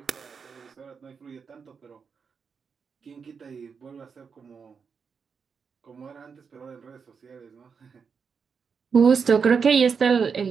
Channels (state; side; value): quieter; left; 5.9 dB